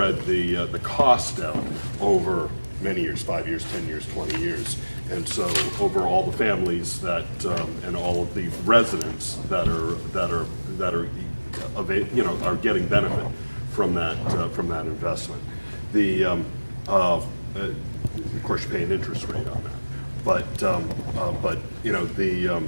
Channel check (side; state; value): both; inverted; correlation -1.00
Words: the cost out over many years, 5 years, 10 years, 20 years. And so over all the families that, and all of the residents that are are getting benefit from that investment. Of course, you pay an interest rate on that, but